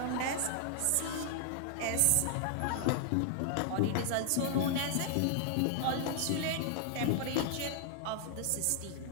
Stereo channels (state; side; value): different; both; correlation 0.00